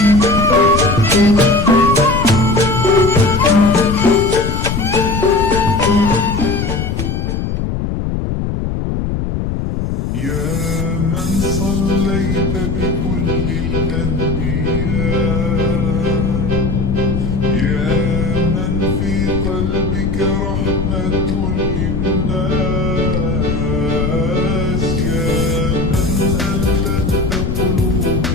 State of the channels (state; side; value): noise; left; rumble, 1 dB below the sound